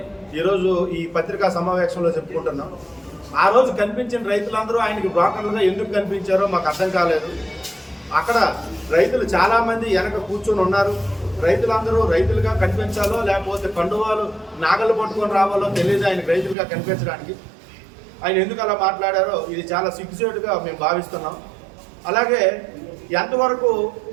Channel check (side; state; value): left; drops out; at 16.6 s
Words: ఈరోజు ఈ పత్రికా సమావేశంలో చెప్పుకుంటున్నాం. ఆ రోజు కనిపించిన రైతులందరూ ఆయనకి బ్రోకర్లుగా ఎందుకు కనిపించారో మాకు అర్థం కాలేదు. అక్కడ రైతులు చాలామంది వెనక కూర్చొని ఉన్నారు. రైతులందరూ రైతులుగా కనిపించాలో లేకపోతే కండువాలు నాగలు పట్టుకొని రావాలో తెలియదు ఆయనకు రైతులుగా కనిపించడానికి. ఆయన ఎందుకు అలా మాట్లాడారో ఇది చాలా సిగ్గుచేటుగా మేము భావిస్తున్నాం. అలాగే ఎంతవరకు